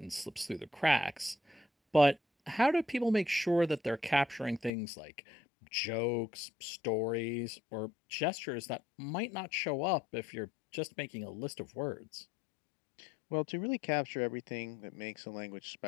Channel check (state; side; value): drops out; right; at 4.7 s